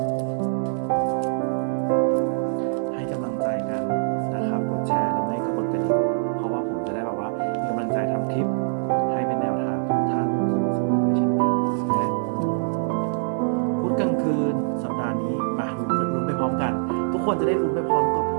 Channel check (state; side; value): silent; left; 55 dB below the other